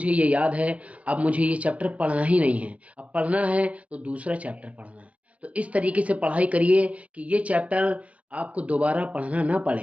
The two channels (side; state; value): left; late; 0.065 ms